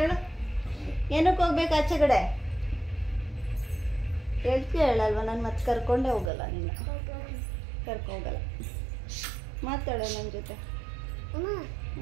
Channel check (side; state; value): left; drops out; at 6.3 s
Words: ಹೇಳು? ಏನಕ್ಕೆ ಹೋಗ್ಬೇಕು ಆಚೆ ಕಡೆ? ಹೇಳ್ತೀಯ ಹೇಳಲ್ವ? ನಾನು ಮತ್ತೆ ಕರ್ಕೊಂಡೇ ಹೋಗಲ್ಲ. ನಿನ್ನ ಕರ್ಕೊಂಡೋಗಲ್ಲ. ಮಾತಾಡೋ ನನ್ನ ಜೊತೆ.